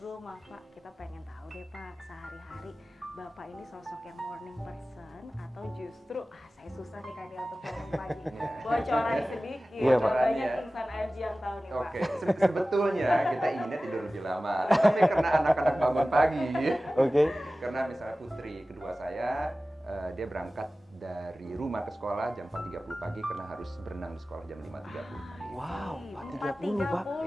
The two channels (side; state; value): both; normal; correlation 0.96